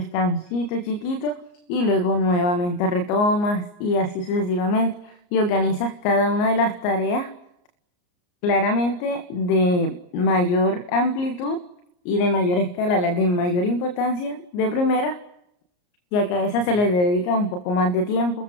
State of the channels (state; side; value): late; right; 34 ms